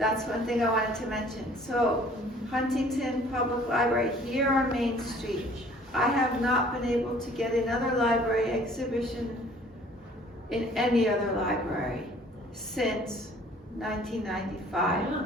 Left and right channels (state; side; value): normal; both; correlation 0.54